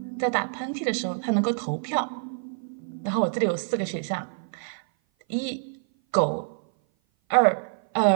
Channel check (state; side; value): silent; left; 56 dB below the other